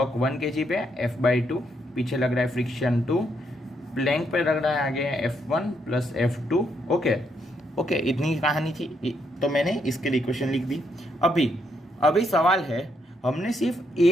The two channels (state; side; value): normal; both; correlation 0.76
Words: 1 kg पे F/2, पीछे लग रहा है फ्रिक्शन 2, प्लैंक पे लग रहा है आगे F1 प्लस F2। ओके, इतनी कहानी थी, तो मैंने इसके लिए इक्वेशन लिख दी। अभी सवाल है, हमने सिर्फ ए